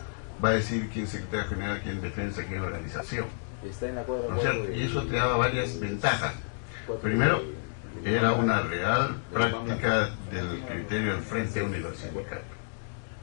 va a decir quién es secretario general, quién defensa, quién organización. ¿No es cierto? Y eso te daba varias ventajas. Primero, era una real práctica del criterio del Frente Único Sindical,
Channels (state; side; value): silent; right; digital silence